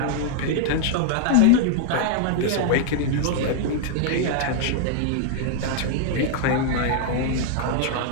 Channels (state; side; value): different; both; correlation 0.00